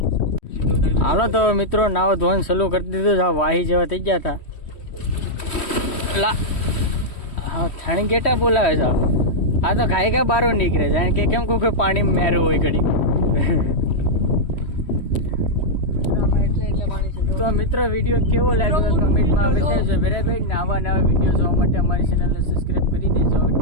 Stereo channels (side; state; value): right; late; 3.1 ms